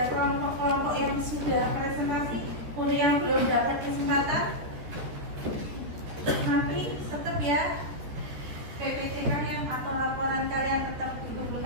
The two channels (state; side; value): late; left; 14 ms